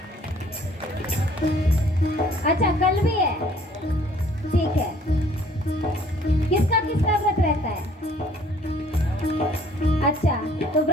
अच्छा कल भी है, ठीक है। किसका किसका व्रत रहता है? अच्छा तो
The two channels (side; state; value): both; normal; correlation 0.57